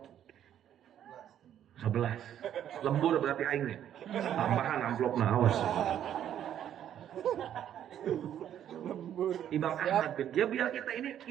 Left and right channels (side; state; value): left; quieter; 10.4 dB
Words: 11. Lembur berarti aingnya. Tambahan amplopna awas. Imam Ahmad bin ya biar